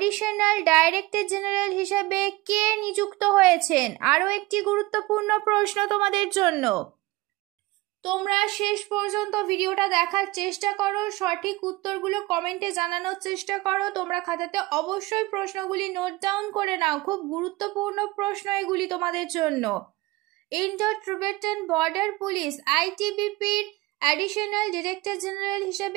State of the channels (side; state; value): left; quieter; 21.0 dB